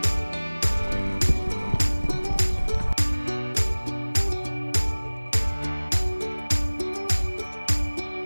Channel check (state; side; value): inverted; both; correlation -1.00